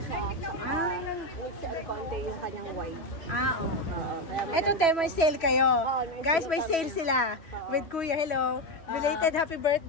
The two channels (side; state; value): right; late; 3.1 ms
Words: siya? Conde yung kanyang white. Okay. Ito, te, may sale kayo. Guys, may sale sila. With Kuya, hello. Belated happy